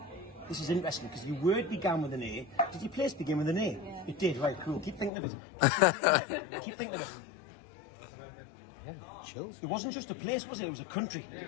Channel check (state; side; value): drops out; right; at 5.1 s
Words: This is interesting because your word began with an A. Did your place begin with an A? Yeah. It did, right, cool. Keep thinking of it. Keep thinking of it. Chills. It wasn't just a place, was it? It was a country.